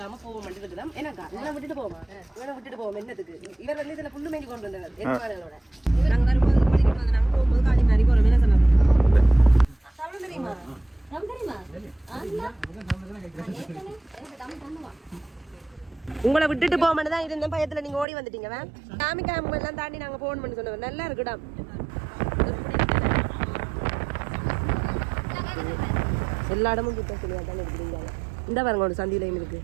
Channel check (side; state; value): left; drops out; at 18.1 s